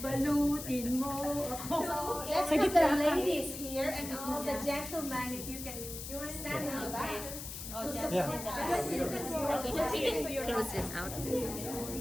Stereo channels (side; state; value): left; noise; hiss, 9 dB below the sound